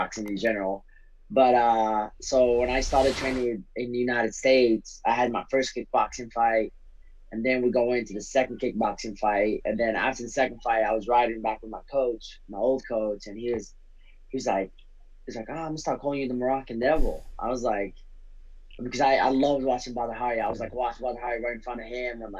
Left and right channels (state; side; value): identical; both; correlation 1.00